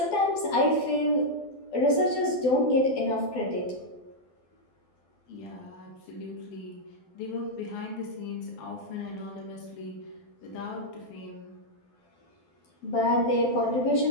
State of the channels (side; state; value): right; late; 12 ms